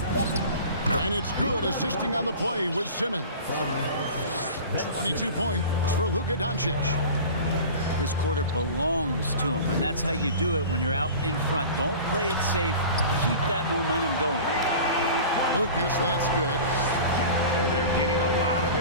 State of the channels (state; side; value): inverted; both; correlation -0.37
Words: And it's good, assisting on the play with Simmons. 22 points for Luka Doncic. This quarter belongs to him, and that's how you do it when you're out in front. Don't play it safe. Keep that momentum going. Lucas, that's good. They're getting a lot of